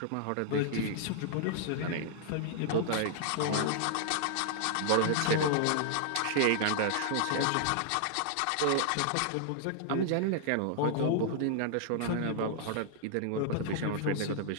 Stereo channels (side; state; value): both; different; correlation -0.01